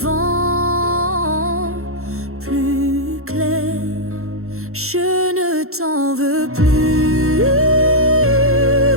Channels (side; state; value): left; late; 0.63 ms